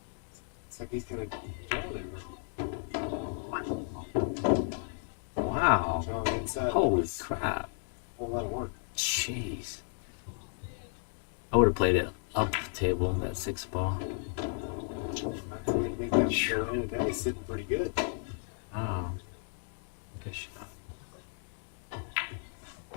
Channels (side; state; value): right; silent; 55 dB below the other